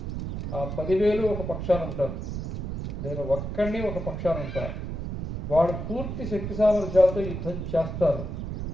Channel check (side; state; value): right; noise; rumble, 5 dB below the sound